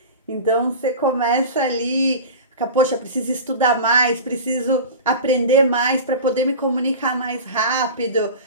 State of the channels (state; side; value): inverted; both; correlation -0.32